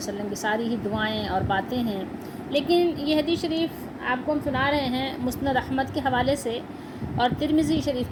کی ساری ہی دعائیں اور باتیں ہیں، لیکن یہ حدیث شریف آپ کو ہم سنا رہے ہیں مسند احمد کے حوالے سے اور ترمذی شریف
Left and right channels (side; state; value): both; identical; correlation 1.00